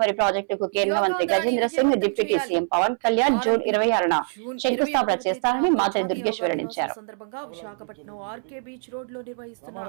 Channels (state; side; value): silent; left; 62 dB below the other